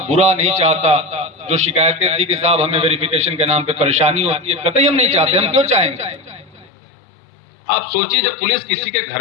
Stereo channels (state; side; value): drops out; right; at 6.7 s